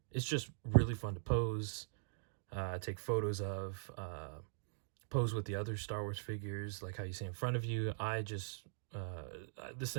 It's just really fun to pose. Take photos of, pose with the other Star Wars figures, like how you see in front of you. I just, this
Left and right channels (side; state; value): left; silent; digital silence